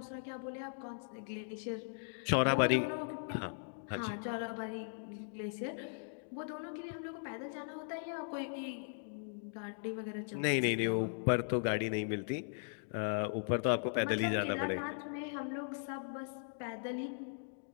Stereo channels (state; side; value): silent; right; digital silence